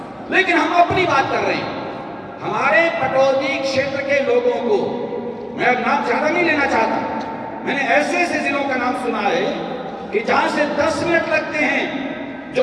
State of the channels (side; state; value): both; identical; correlation 1.00